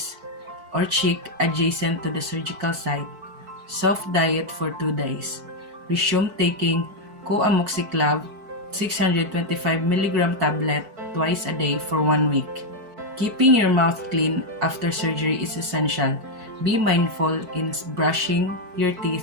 or cheek adjacent to the surgical site. Soft diet for 2 days. Resume taking co-amoxiclav 625 mg tablet twice a day for 1 week. Keeping your mouth clean after surgery is essential. Be mindful in brushing your teeth,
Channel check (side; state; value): left; late; 4.6 ms